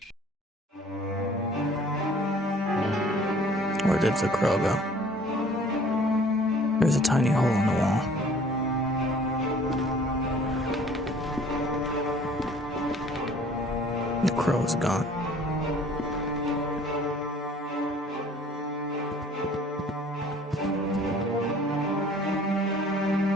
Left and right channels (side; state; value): both; normal; correlation 0.53